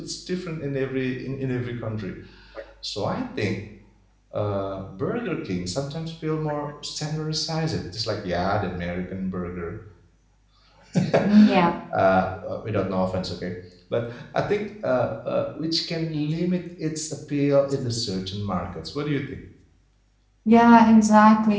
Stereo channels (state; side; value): identical; both; correlation 1.00